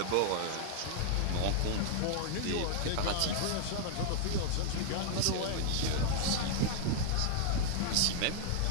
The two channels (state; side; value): different; both; correlation -0.01